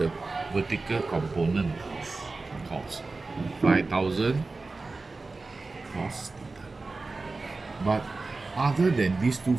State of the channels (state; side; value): quieter; left; 3.6 dB